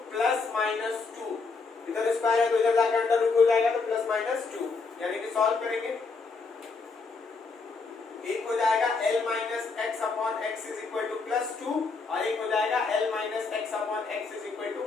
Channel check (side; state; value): right; quieter; 4.4 dB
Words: plus minus 2, इधर स्क्वायर है तो इधर जाकर अंडर रूट हो जाएगा, तो प्लस माइनस 2, यानी कि सॉल्व करेंगे, एक हो जाएगा L minus x upon x is equal to plus 2 और एक हो जाएगा L minus x upon x is equal to